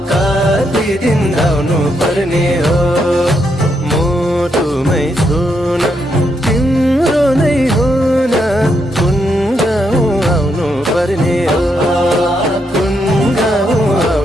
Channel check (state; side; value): normal; both; correlation 0.79